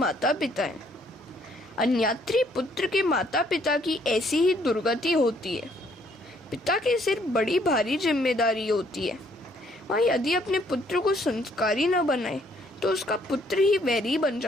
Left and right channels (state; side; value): normal; both; correlation 0.66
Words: पिता हैं। अन्यात्री पुत्र के माता पिता की ऐसी ही दुर्गति होती है। पिता के सिर बड़ी भारी जिम्मेदारी होती है। वह यदि अपने पुत्र को संस्कारी न बनाए तो उसका पुत्र ही वैरी बन